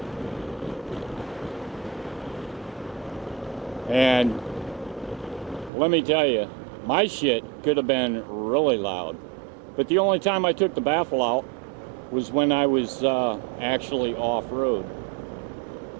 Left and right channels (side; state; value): left; drops out; at 5.7 s